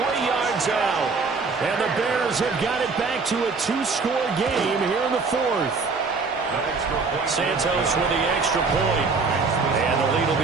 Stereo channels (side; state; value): left; quieter; 4.4 dB